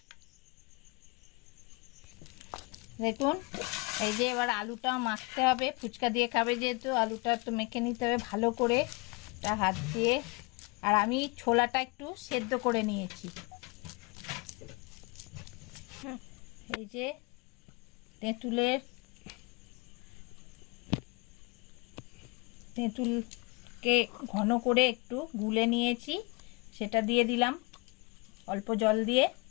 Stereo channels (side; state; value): right; quieter; 27.3 dB